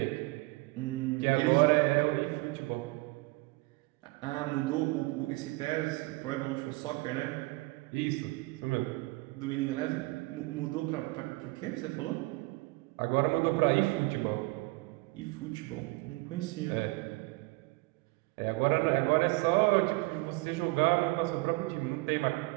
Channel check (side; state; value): left; quieter; 23.8 dB